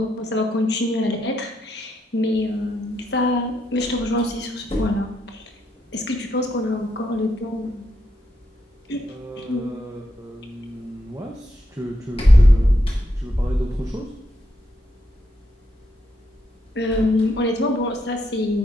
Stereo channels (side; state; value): both; normal; correlation 0.80